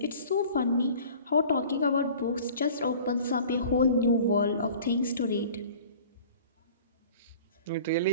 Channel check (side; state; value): both; inverted; correlation -0.45